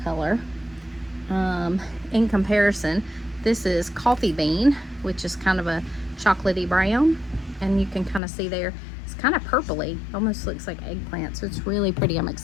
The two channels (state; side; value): drops out; right; at 8.2 s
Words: color. In comparison, this is coffee bean, which is kind of a chocolatey brown. And you can kind of see there, it's kind of purpley. Almost looks like eggplant. So it's really pretty. I'm